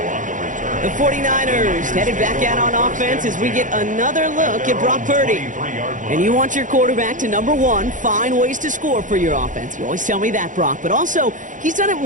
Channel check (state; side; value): late; left; 0.37 ms